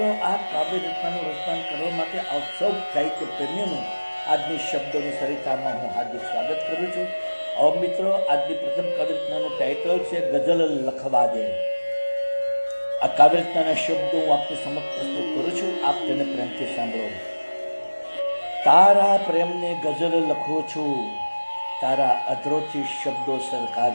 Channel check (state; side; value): inverted; both; correlation -1.00